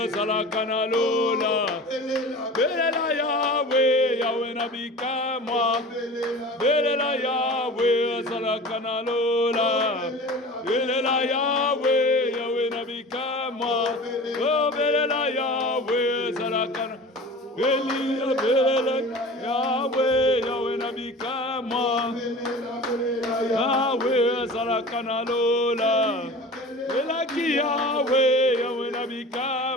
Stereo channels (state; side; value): normal; both; correlation 0.38